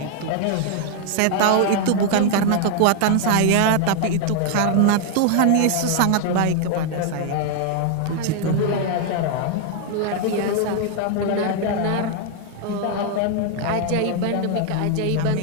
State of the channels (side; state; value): both; different; correlation 0.00